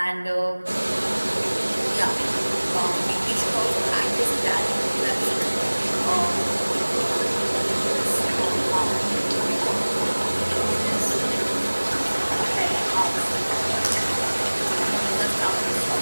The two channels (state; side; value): inverted; both; correlation -1.00